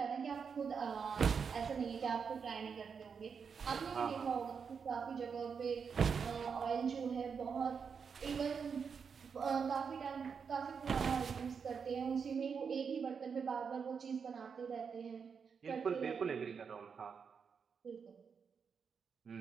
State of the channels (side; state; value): left; quieter; 6.2 dB